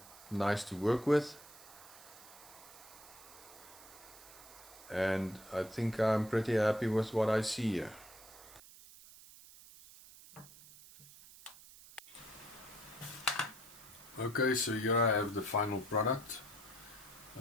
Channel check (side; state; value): right; noise; hiss, 19 dB below the sound